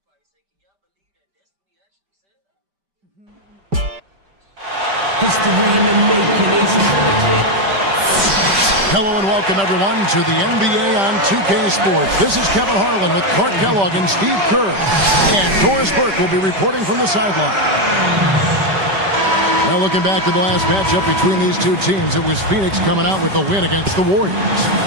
They gonna probably say, can y'all believe that Destiny actually said that? Hello and welcome, everyone, to the NBA on 2K Sports. This is Kevin Harlan with Clark Kellogg and Steve Kerr. And Doris Burke will be reporting from the sideline. Now, looking back to the last matchup between these two teams, it was Phoenix coming out with a win against the Warriors.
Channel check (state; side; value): late; left; 5.0 ms